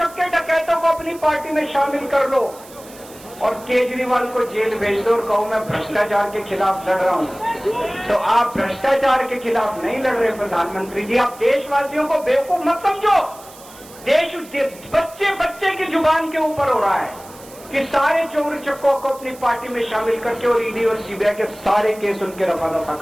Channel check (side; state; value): right; noise; hiss, 20 dB below the sound